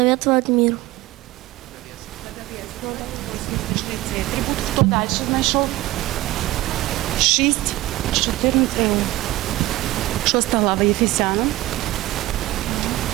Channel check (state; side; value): quieter; left; 17.6 dB